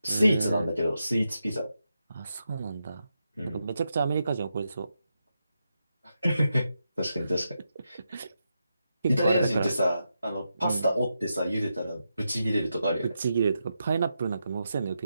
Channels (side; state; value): both; inverted; correlation -0.86